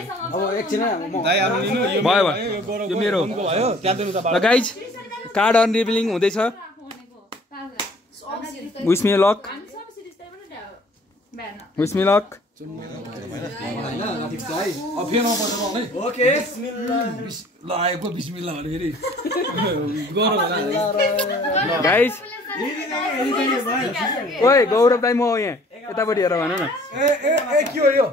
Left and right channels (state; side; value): normal; both; correlation 0.54